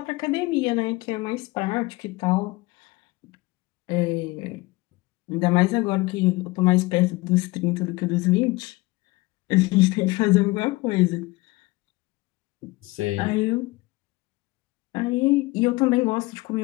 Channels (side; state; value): right; quieter; 22.0 dB